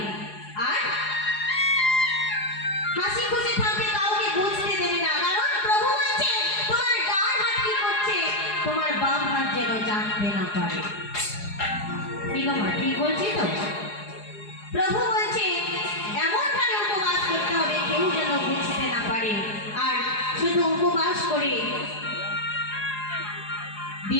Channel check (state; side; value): late; right; 4.8 ms